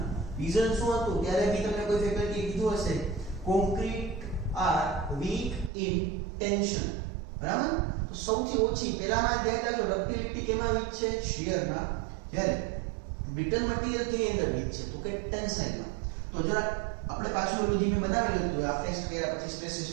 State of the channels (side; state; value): left; drops out; at 5.7 s